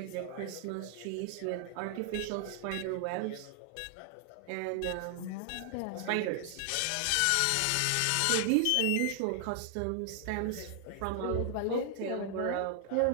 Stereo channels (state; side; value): different; both; correlation 0.00